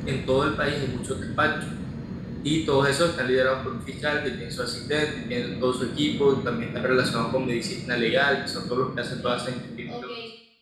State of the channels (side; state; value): both; identical; correlation 1.00